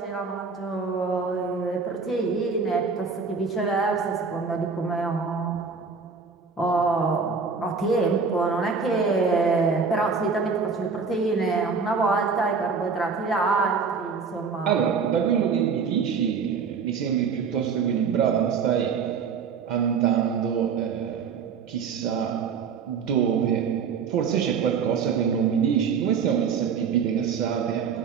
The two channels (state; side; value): quieter; left; 5.6 dB